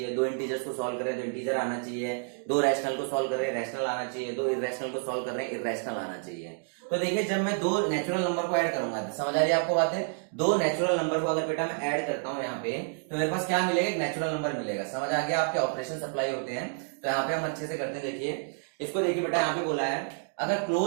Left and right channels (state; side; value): silent; left; 58 dB below the other